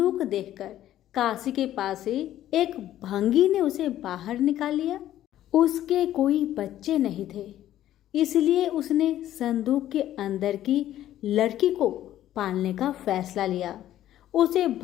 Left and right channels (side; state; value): right; quieter; 12.7 dB